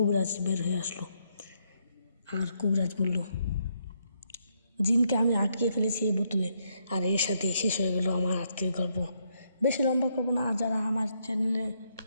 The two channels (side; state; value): both; inverted; correlation -0.76